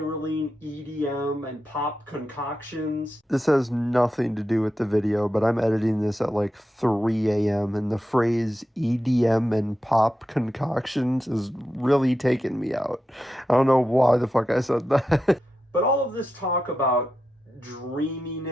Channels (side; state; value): both; normal; correlation 0.88